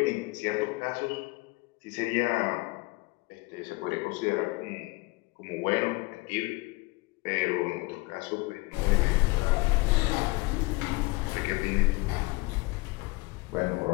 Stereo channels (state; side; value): quieter; right; 24.3 dB